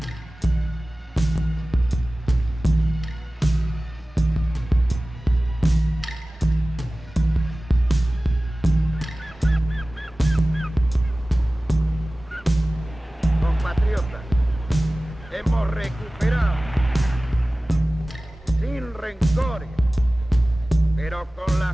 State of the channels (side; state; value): both; normal; correlation 0.97